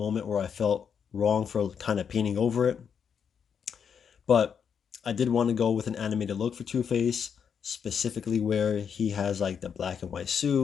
where I felt wrong for kind of painting over it. But I did want to go with an animated look for Two-Face, specifically where he has like the black and white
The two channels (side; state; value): right; quieter; 7.2 dB